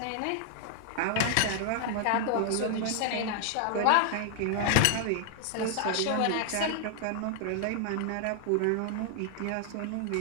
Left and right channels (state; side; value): different; both; correlation 0.00